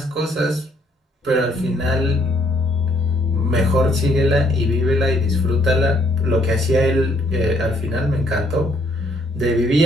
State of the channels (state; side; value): normal; both; correlation 0.67